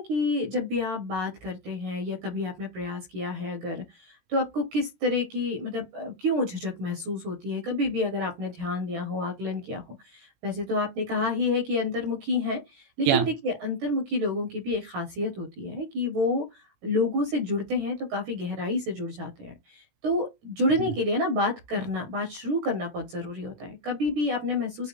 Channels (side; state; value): left; late; 18 ms